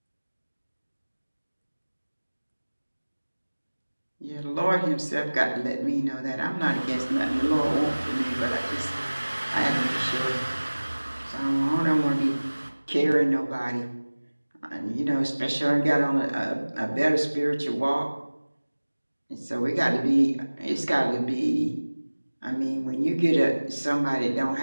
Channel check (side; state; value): both; inverted; correlation -1.00